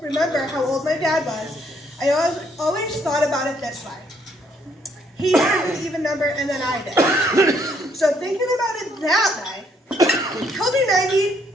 remember how old my dad was, I always thought about it this way. He had an even number and then I did. So thinking about it that way, he'll be 90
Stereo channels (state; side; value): normal; both; correlation 0.69